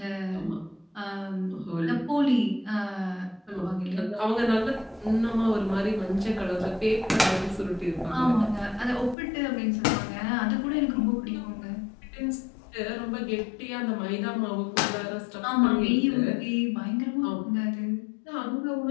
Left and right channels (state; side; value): drops out; right; at 9.2 s